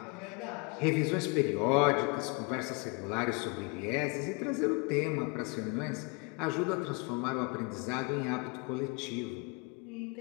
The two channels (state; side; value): quieter; right; 31.8 dB